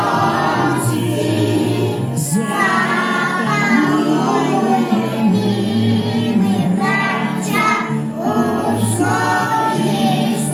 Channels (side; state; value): both; identical; correlation 1.00